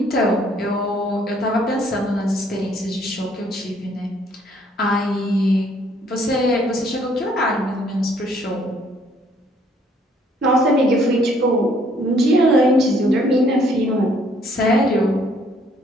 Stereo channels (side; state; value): both; normal; correlation 0.64